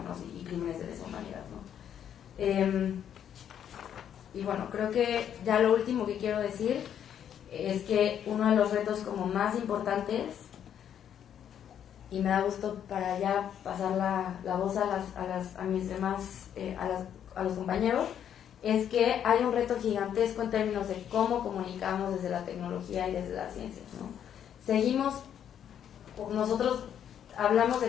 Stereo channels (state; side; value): quieter; right; 9.3 dB